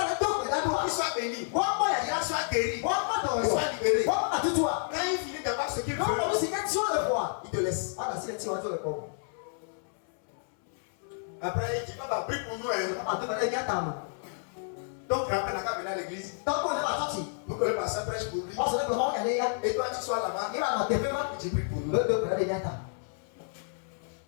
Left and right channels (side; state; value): right; silent; 58 dB below the other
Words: qu'ils soient bénis. Pour qu'ils soient guéris. Pour qu'ils soient libérés. Quand il finit d'avoir ce qu'il veut, il te laisse. Après, il dit pas prie pour nous. Donc, rappelle la venir à l'église. Pour que le pasteur prêche pour lui. Et toi, tu sois là-bas. Tu pries pour nous.